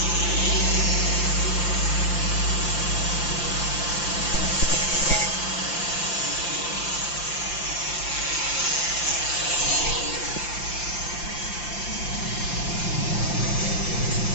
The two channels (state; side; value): late; right; 5.8 ms